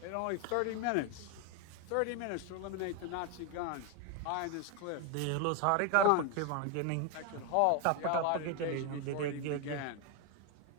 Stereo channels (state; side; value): different; both; correlation 0.01